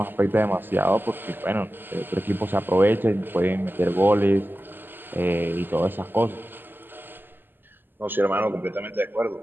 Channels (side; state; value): left; late; 0.093 ms